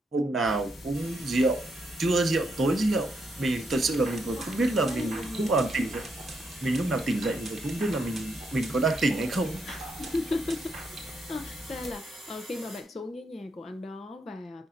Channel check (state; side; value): normal; both; correlation 0.79